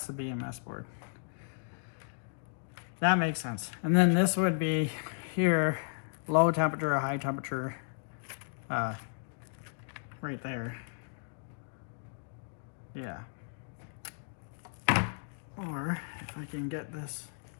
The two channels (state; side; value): silent; right; digital silence